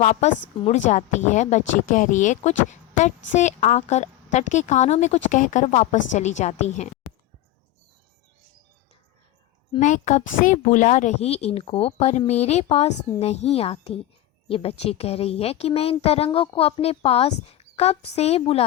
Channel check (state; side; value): quieter; right; 14.3 dB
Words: मुड़ जाती है, बच्ची कह रही है कुछ तट से आकर तट के कानों में कुछ कहकर वापस चली जाती हैं। मैं कब से बुला रही इनको पर मेरे पास नहीं आती। ये बच्ची कह रही है कि मैं इन तरंगों को अपने पास कब से